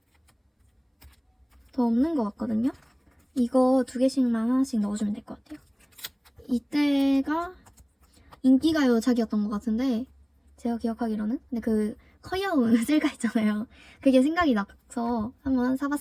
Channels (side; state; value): both; identical; correlation 1.00